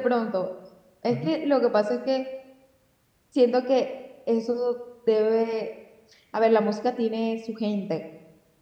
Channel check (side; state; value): both; identical; correlation 1.00